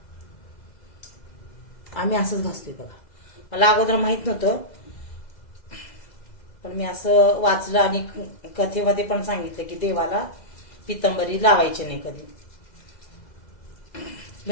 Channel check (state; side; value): late; right; 2.0 ms